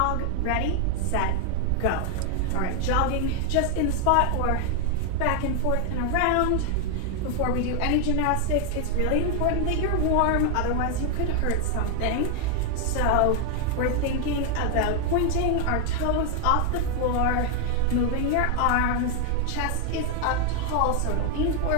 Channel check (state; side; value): different; both; correlation 0.00